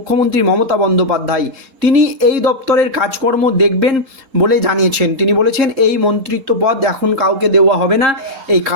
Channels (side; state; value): left; late; 3.8 ms